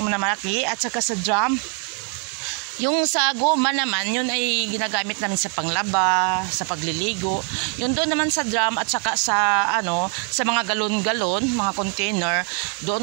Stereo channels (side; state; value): left; quieter; 36.8 dB